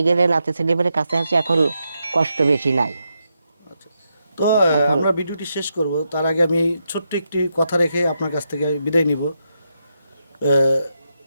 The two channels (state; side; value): inverted; both; correlation -0.84